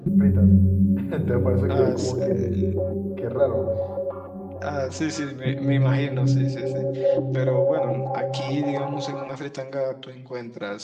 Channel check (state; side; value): identical; both; correlation 1.00